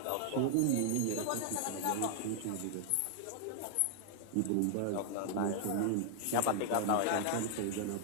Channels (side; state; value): both; different; correlation -0.01